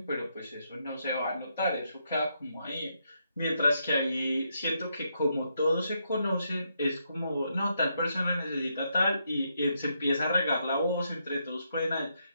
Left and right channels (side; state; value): both; inverted; correlation -0.79